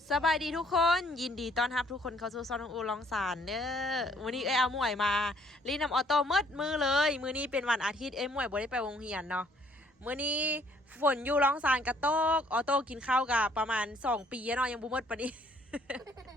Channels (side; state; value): both; normal; correlation 0.64